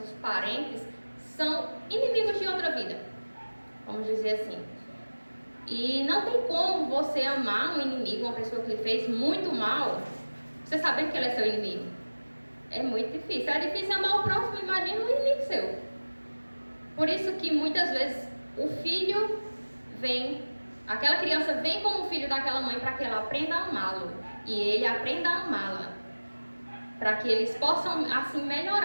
parentes, são inimigos de outra vida, vamos dizer assim. E não tem como você amar um inimigo, uma pessoa que lhe fez muito mal, você sabendo que ele é seu inimigo. É muito difícil. É difícil amar o próximo, imagina um inimigo seu. Por isso que muitas vezes o filho vem, aquela criança vem como filho daquela mãe para que ela aprenda a amá-lo. e ele aprenda a amá-la, para que eles possam assim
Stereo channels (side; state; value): both; inverted; correlation -1.00